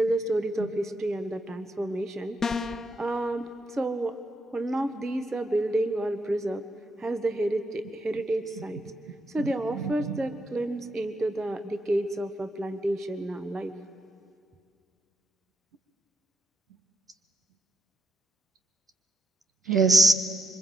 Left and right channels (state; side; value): normal; both; correlation 0.81